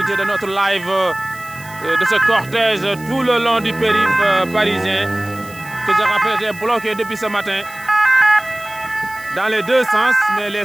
de notre live de ce cortège tout le long du périph' parisien, que je rappelle était bloqué depuis ce matin dans les deux sens, mais les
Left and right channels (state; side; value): noise; right; hiss, 20 dB below the sound